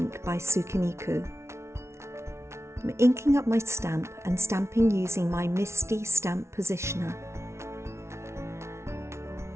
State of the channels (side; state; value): left; late; 0.13 ms